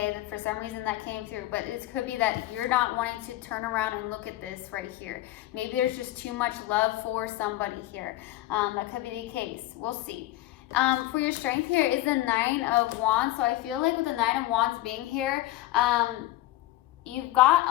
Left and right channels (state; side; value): quieter; right; 16.4 dB